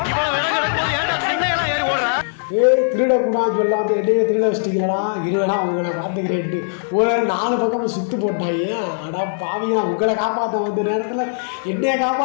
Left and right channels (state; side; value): silent; right; digital silence